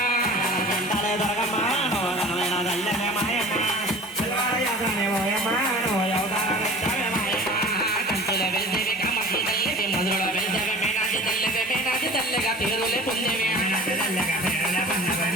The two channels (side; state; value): both; normal; correlation 0.42